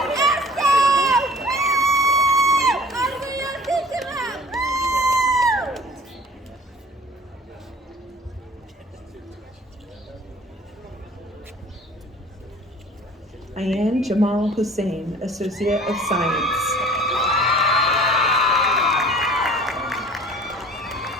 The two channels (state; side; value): normal; both; correlation 0.49